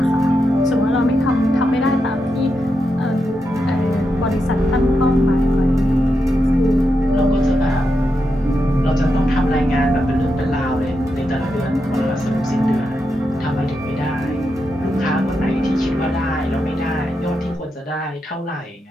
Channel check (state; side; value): normal; both; correlation 0.86